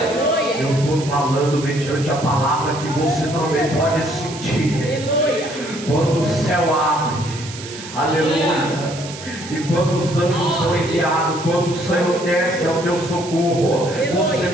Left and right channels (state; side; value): noise; right; hiss, 13 dB below the sound